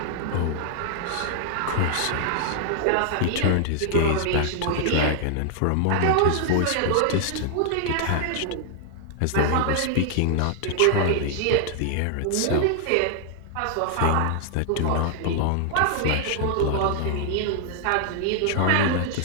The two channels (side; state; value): both; different; correlation 0.00